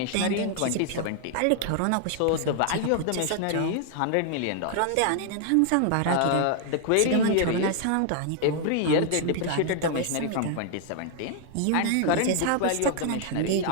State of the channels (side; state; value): both; different; correlation 0.00